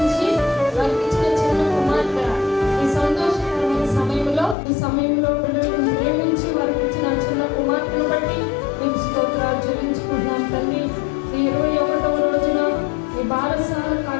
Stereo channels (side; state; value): right; drops out; at 4.5 s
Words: వర్తించిన చిన్న కుమార్తె. ఈ సమయంలో బిడ్డలను ప్రేమించి వర్తించిన చిన్న కుమార్తెను బట్టి నీకు స్తోత్రాలు చెల్లించుకుంటున్నాం తండ్రి. ఈ 21వ రోజున ఈ బాలసాల